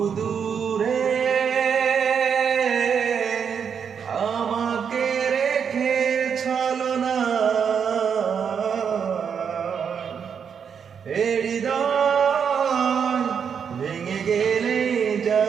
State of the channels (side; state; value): left; quieter; 7.1 dB